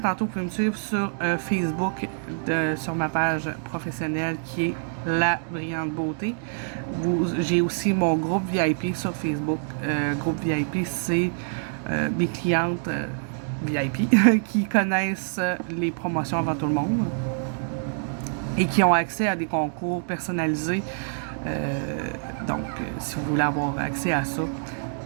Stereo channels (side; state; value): left; silent; digital silence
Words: vous pouvez me suivre sur Facebook, sur ma page professionnelle qui est La Brillante Beauté. J'ai aussi mon groupe VIP sur Facebook. Groupe VIP, c'est mes clientes VIP qui connaissent les promotions avant tout le monde et qui ont accès à des concours personnalisés. Donc, si vous voulez avoir accès à ça,